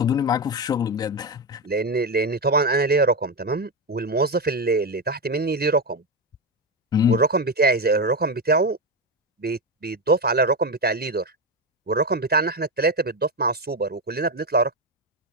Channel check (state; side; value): normal; both; correlation 0.12